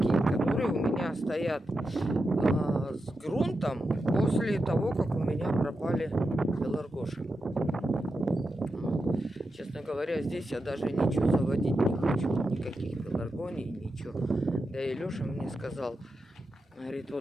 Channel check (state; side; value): normal; both; correlation 0.88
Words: которые у меня стоят с грунтом после того, как у меня пропали пеларгоши. Честно говоря, здесь я даже ничего заводить не хочу. Никаких пеларгоний, ничего. Да и Леша мне сказал, говорит,